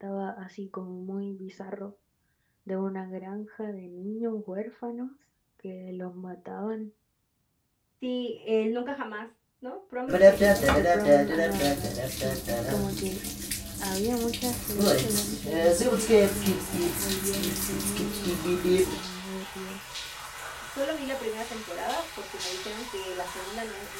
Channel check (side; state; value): both; identical; correlation 1.00